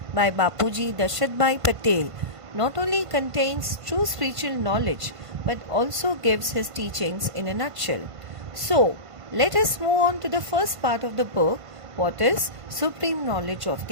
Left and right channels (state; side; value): late; left; 1.5 ms